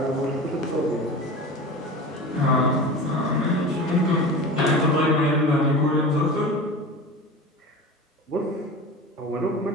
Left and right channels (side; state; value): both; normal; correlation 0.32